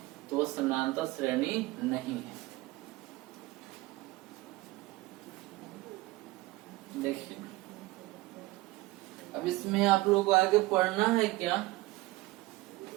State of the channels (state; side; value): quieter; left; 20.2 dB